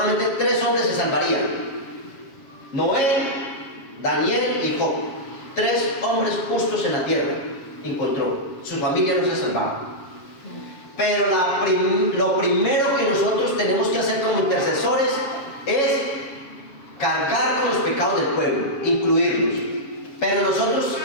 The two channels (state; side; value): late; right; 7.4 ms